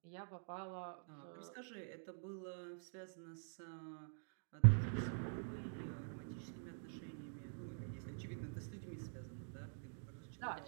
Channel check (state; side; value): silent; left; digital silence